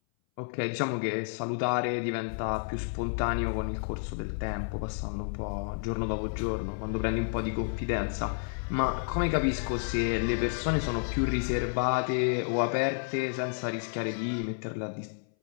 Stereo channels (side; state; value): right; silent; 57 dB below the other